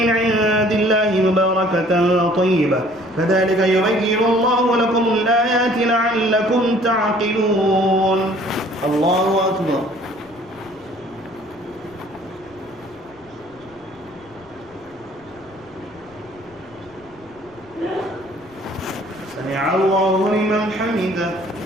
عند الله مباركة طيبة كذلك يبين الله لكم الآيات لعلكم تعقلون. الله أكبر. سمع الله لمن حمده.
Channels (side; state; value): left; noise; rumble, 27 dB below the sound